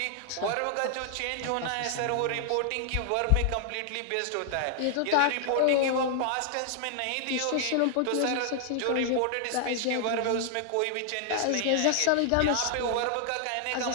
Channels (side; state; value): both; different; correlation 0.00